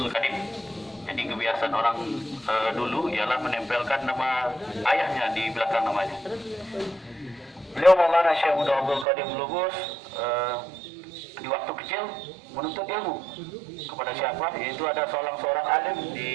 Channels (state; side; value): drops out; left; at 9.1 s